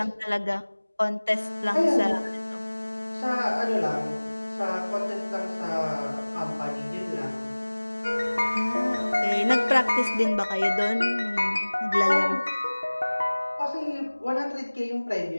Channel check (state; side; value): inverted; both; correlation -1.00